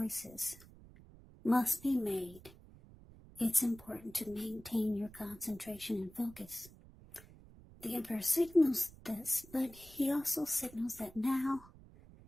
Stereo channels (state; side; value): noise; right; rumble, 21 dB below the sound